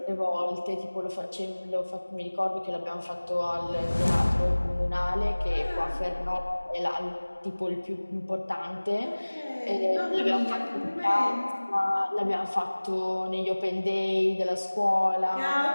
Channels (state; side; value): inverted; both; correlation -1.00